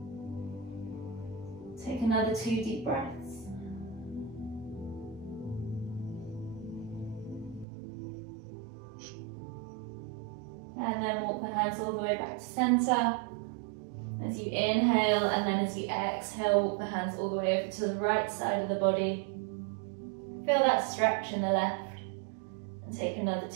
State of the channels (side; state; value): left; drops out; at 7.7 s